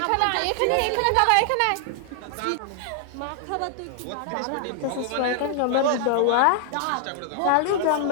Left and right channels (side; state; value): both; different; correlation 0.00